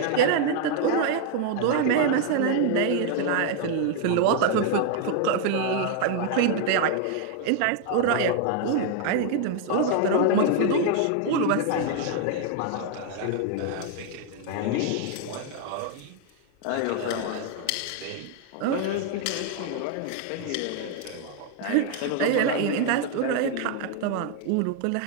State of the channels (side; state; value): both; different; correlation 0.00